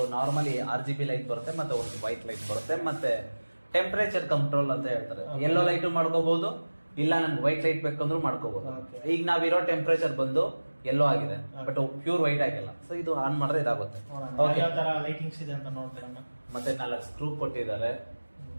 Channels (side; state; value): both; inverted; correlation -1.00